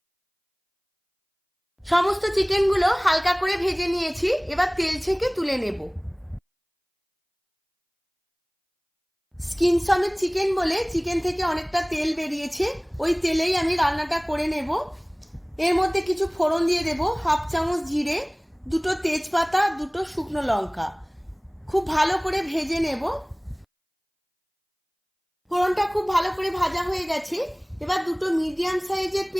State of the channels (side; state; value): both; identical; correlation 1.00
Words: সমস্ত চিকেনগুলো হালকা করে ভেজে নিয়েছি। এবার তেল ছেঁকে তুলে নেব। স্কিন সমেত চিকেন বলে চিকেন থেকে অনেকটা তেল বেরিয়েছে, ওই তেলেই আমি রান্নাটা করে নেব। এর মধ্যে কিছু ফোড়ন দিয়ে দেব। 1/2 চামচ জিরে, 2টো তেজপাতা, 2টো শুকনো লঙ্কা। খুব ভালো করে ভেজে নেব। ফোড়নটা খুব ভালো করে ভাজা হয়ে গেছে। এবার 2টো মিডিয়াম সাইজের